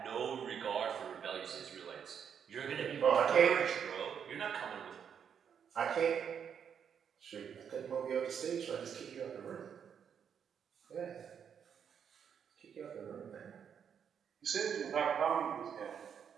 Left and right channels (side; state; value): left; quieter; 7.7 dB